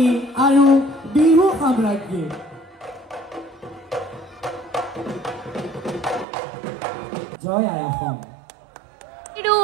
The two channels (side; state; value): left; drops out; at 6.2 s